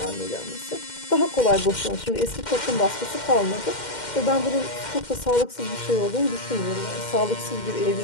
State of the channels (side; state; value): right; late; 2.1 ms